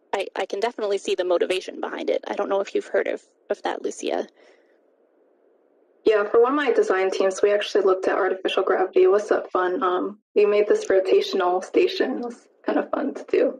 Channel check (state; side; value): identical; both; correlation 1.00